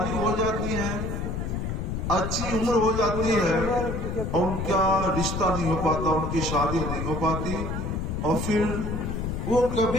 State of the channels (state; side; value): noise; left; rumble, 3 dB below the sound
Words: ہو جاتی ہیں، اچھی عمر ہو جاتی ہے، اور ان کا رشتہ نہیں ہو پاتا، ان کی شادی نہیں ہو پاتی، اور پھر وہ